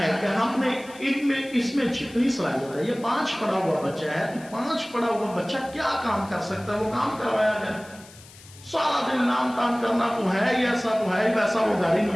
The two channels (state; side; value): noise; left; hiss, 21 dB below the sound